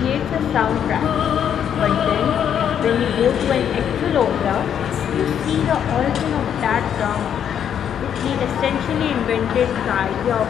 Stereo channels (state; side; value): quieter; right; 8.9 dB